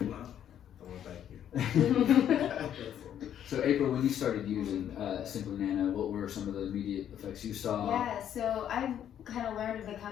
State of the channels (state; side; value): quieter; right; 10.0 dB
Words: Well, I want to thank you. So April, when you started using Simplinano, what were some of the immediate effects you saw? Yeah, so I've kind of learned of the